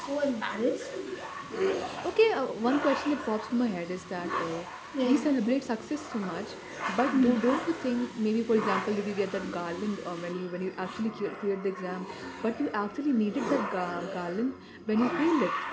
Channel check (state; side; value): identical; both; correlation 1.00